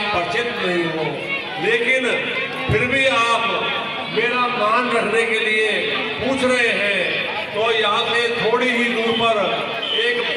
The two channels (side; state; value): both; identical; correlation 1.00